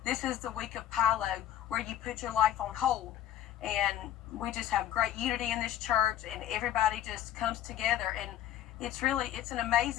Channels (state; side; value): quieter; right; 11.7 dB